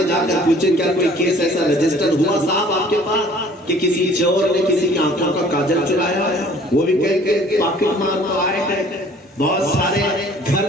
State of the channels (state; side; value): normal; both; correlation 0.53